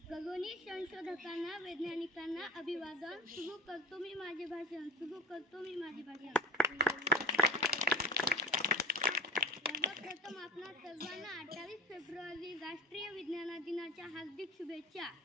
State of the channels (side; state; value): both; normal; correlation 0.33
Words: खगोनी संशोधकांना, वैज्ञानिकांना अभिवादन. सुरू करतो मी माझे भाषण. सर्वप्रथम आपणा सर्वांना 28 फेब्रुवारी राष्ट्रीय विज्ञान दिनाच्या हार्दिक शुभेच्छा.